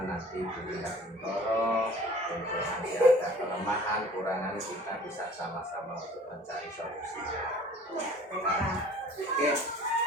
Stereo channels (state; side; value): normal; both; correlation 0.48